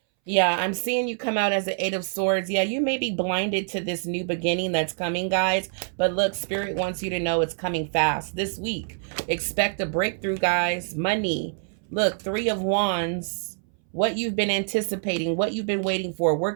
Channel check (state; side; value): silent; left; 61 dB below the other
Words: Yeah, I'm seeing you come out as an Eight of Swords. Yeah, you may be blinded to this new beginning that's coming, guys. But look, Spirit wants you to know it's coming fast this week. Expect a breakthrough, guys. Money. Look, Three of Wands. What you've been anticipating, what you've been waiting for,